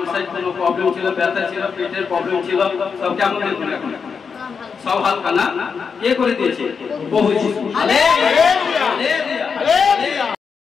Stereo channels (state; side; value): quieter; right; 5.8 dB